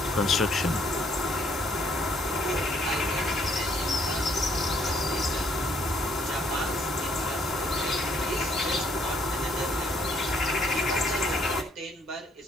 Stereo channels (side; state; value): both; normal; correlation 0.67